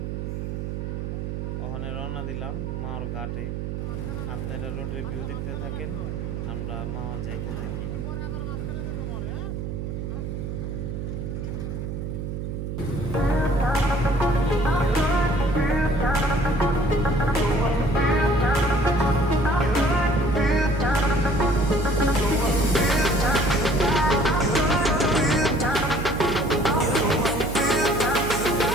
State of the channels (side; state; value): right; noise; hum, 5 dB below the sound